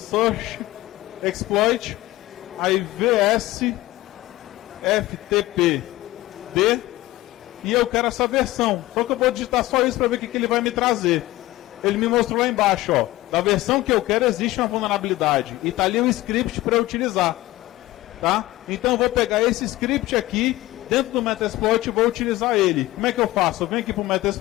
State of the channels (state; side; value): quieter; right; 17.4 dB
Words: Exploit, aí VS-FTP D, e eu quero essa versão. Só que eu vou digitar só isso para ver o que ele vai me trazer. Ele me mostrou lá embaixo, ó, da versão que eu quero existe uma vulnerabilidade, e está ali o script para eu utilizar. Tá? Então eu vou pegar esse script aqui, dentro do Metasploit, e vou utilizar ele. Como é que eu faço? Eu venho aqui para o